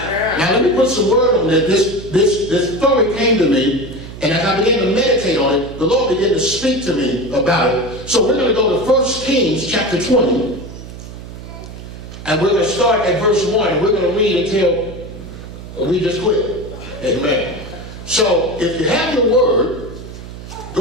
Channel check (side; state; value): right; noise; hum, 13 dB below the sound